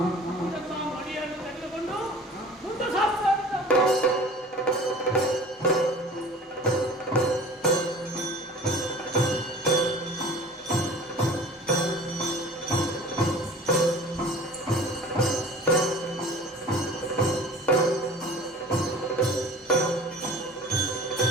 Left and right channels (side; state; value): both; normal; correlation 0.43